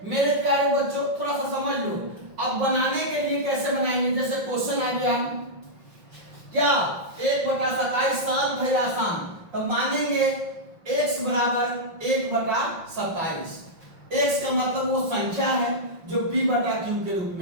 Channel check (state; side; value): late; left; 5.7 ms